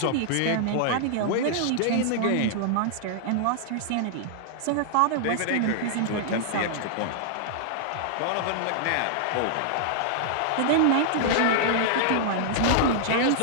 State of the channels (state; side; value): different; both; correlation -0.01